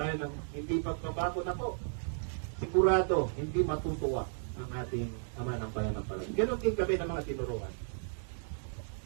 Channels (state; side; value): silent; left; digital silence